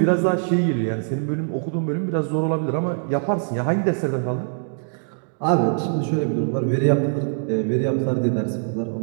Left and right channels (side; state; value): left; silent; digital silence